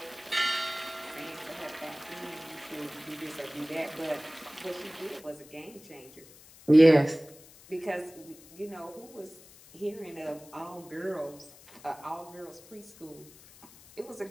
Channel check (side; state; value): left; noise; hiss, 22 dB below the sound